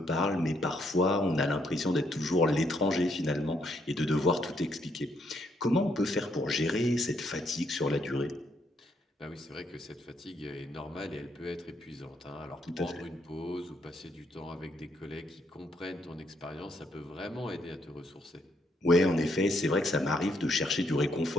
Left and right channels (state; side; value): normal; both; correlation 0.73